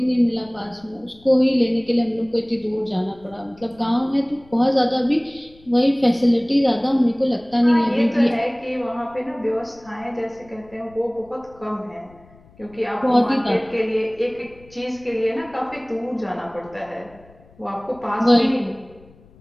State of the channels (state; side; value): noise; left; rumble, 26 dB below the sound